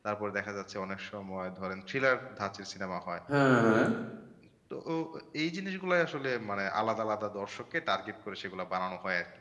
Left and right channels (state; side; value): identical; both; correlation 1.00